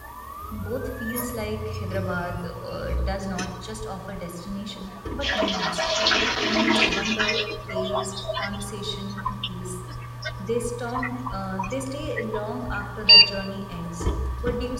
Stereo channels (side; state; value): both; identical; correlation 1.00